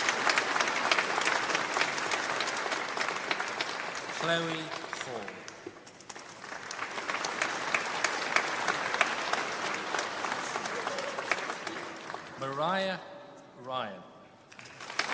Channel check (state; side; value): identical; both; correlation 1.00